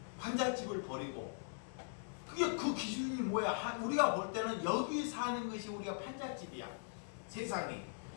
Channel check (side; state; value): right; silent; digital silence